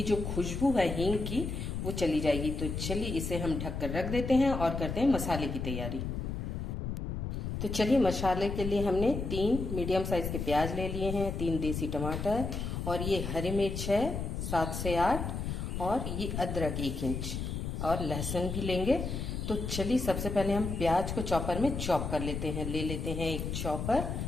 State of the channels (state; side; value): noise; left; rumble, 4 dB below the sound